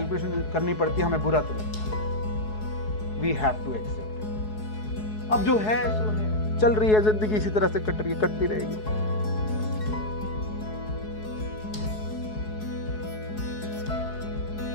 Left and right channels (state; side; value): late; right; 4.7 ms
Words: करनी पड़ती है हमें बुरा तो लगता है। We have to accept it. अब जो है सो है, चल रही है जिंदगी, इसी तरह से कट रही है, कटती रहेगी।